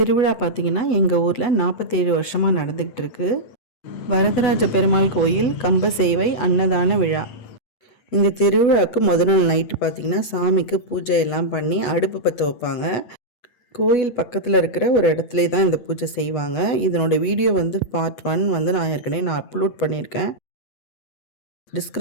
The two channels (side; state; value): right; late; 8.1 ms